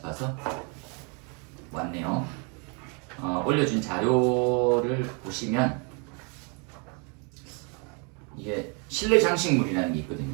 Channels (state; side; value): quieter; left; 34.8 dB